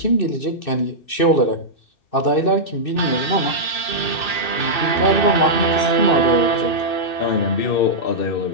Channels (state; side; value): late; right; 2.6 ms